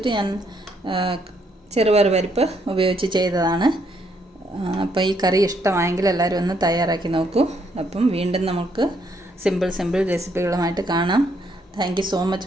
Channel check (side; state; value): both; normal; correlation 0.72